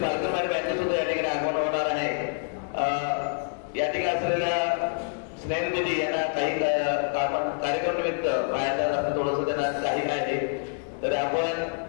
पालकमारी बँकेत सुद्धा या ठिकाणी आगमन होणार आहे। या ठिकाणी असलेल्या स्नेहल दिदी यांना काही कार्यक्रम निमित्त बाहेर जाणं थोडंसं त्यांना काही आहे, तर आपण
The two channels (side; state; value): right; silent; digital silence